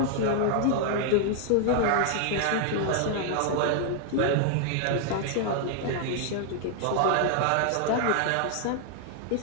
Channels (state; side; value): different; both; correlation 0.00